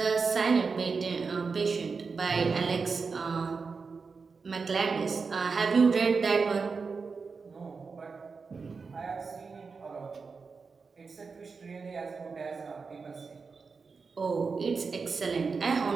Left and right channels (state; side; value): quieter; left; 4.9 dB